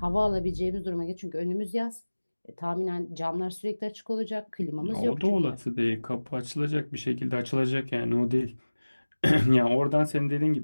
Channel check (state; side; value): inverted; both; correlation -1.00